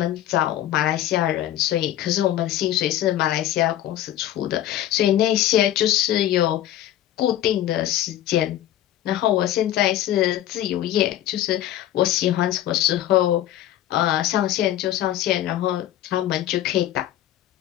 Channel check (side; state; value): right; quieter; 12.6 dB